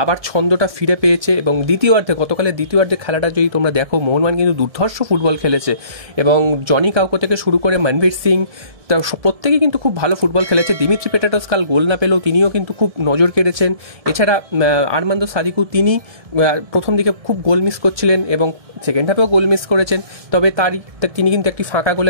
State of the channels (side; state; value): left; late; 1.7 ms